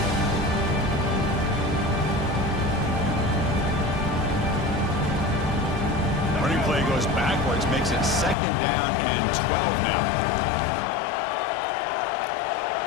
Running play goes backwards, makes it 2nd down and 12 now.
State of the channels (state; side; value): drops out; right; at 8.3 s